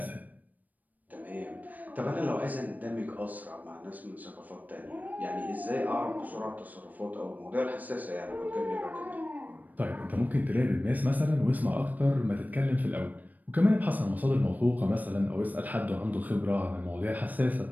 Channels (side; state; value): left; late; 0.082 ms